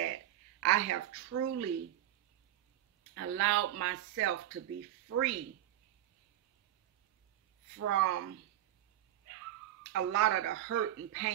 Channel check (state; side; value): quieter; left; 12.9 dB